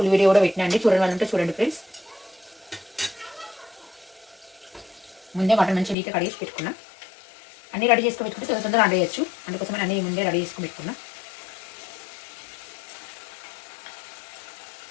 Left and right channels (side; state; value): right; drops out; at 6.0 s